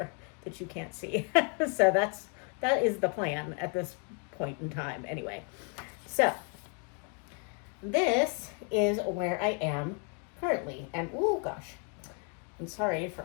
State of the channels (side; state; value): right; quieter; 38.3 dB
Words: that you can't see. So that is the plan at this point in time anyway. So this is where I am currently, and oh gosh, I'm sorry